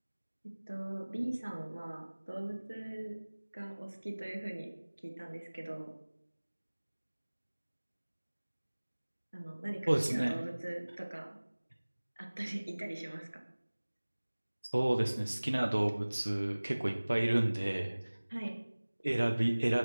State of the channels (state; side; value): inverted; both; correlation -1.00